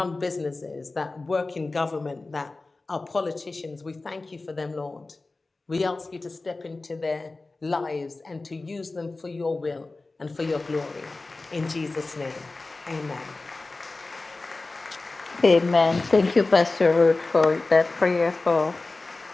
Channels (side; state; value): right; quieter; 3.4 dB